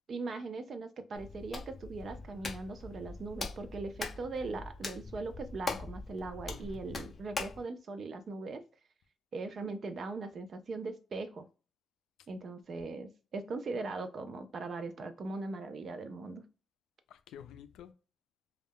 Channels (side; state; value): both; normal; correlation 0.80